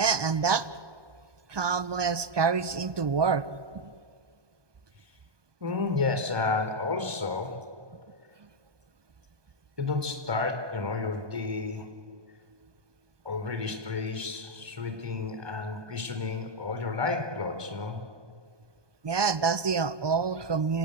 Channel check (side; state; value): left; late; 1.2 ms